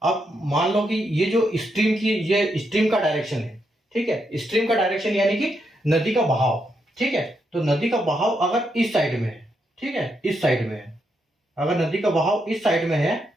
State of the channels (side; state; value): both; normal; correlation 0.80